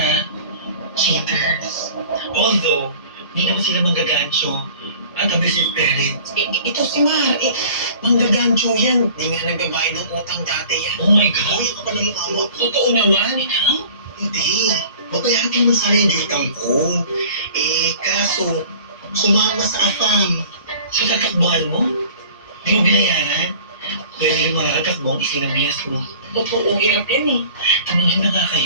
cheaters. Although, hindi naman sila manggagancho at abusive parents. Ito si Mar, manggagancho yan. Di nga nagbabayad ng utang dati yan. Oh my God. Uy, ako pa ng mukha mo. Totoo naman. Ikaw? Hindi. Babayaran ko naman sana yung utang ko. Kaso, sumama sa afam. So, tatakbuhan mo? Di mo binayaran? Pwede yung mga katakbong isinabihas mo. Totoo, hirap yan eh. Tumingin na nga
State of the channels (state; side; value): inverted; both; correlation -0.46